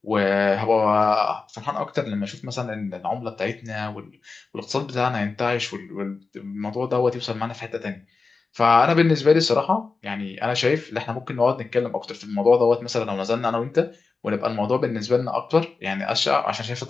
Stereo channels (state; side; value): quieter; right; 4.3 dB